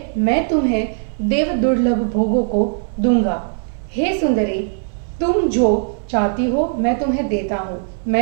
मैं तुम्हें देव दुर्लभ भोगों को दूंगा। हे सुंदरी, तुम जो चाहती हो मैं तुम्हें देता हूँ।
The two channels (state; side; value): silent; left; 60 dB below the other